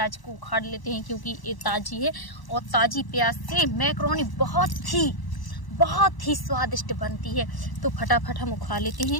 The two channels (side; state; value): right; late; 1.0 ms